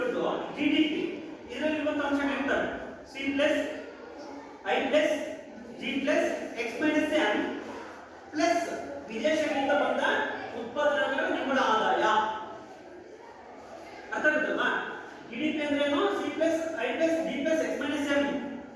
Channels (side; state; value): both; identical; correlation 1.00